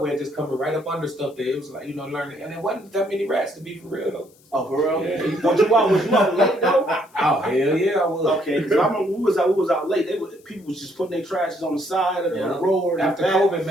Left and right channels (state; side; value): noise; left; hiss, 30 dB below the sound